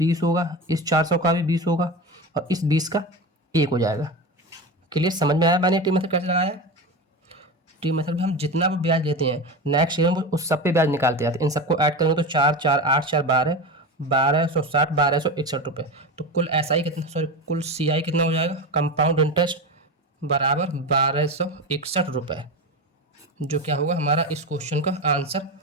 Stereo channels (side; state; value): both; normal; correlation 0.24